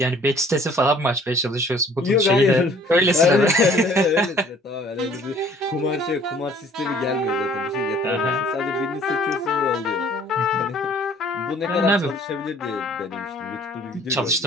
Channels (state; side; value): normal; both; correlation 0.55